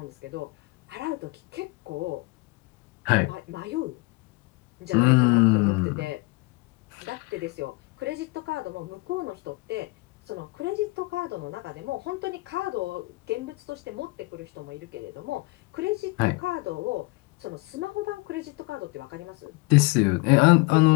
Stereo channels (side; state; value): right; quieter; 24.1 dB